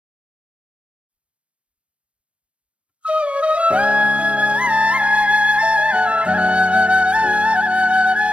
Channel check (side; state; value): left; late; 0.060 ms